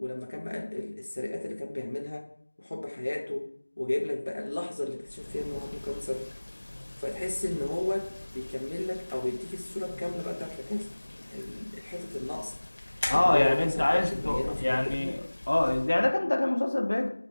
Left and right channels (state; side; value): inverted; both; correlation -1.00